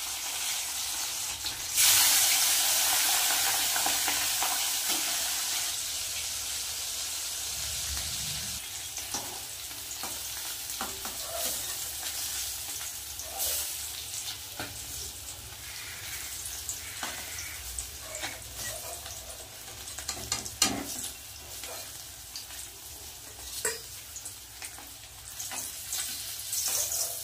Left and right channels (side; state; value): both; identical; correlation 1.00